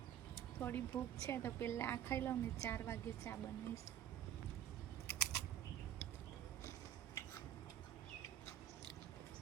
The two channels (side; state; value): left; quieter; 11.0 dB